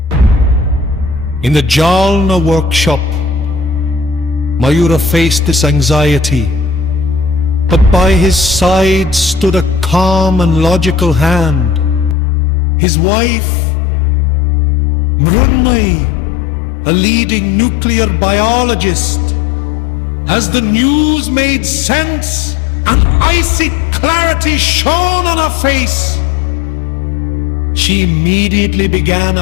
In the Jalna workshop, Mayura faced this anxiety, but by his side stood a calm and logical hand. His wife, Mrunmayi, a leading nuclear biologist. As the news made sense, an icy clarity shone on her face. She immediately began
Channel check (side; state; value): right; drops out; at 12.2 s